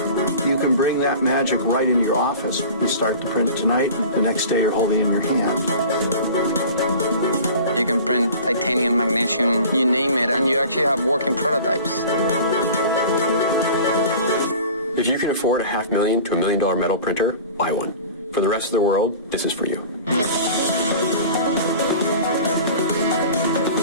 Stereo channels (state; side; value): inverted; both; correlation -0.41